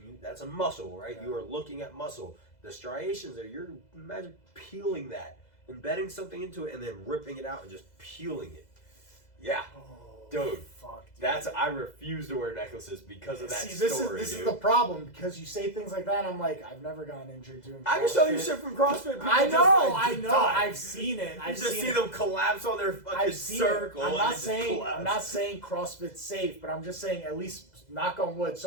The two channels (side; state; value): right; late; 2.0 ms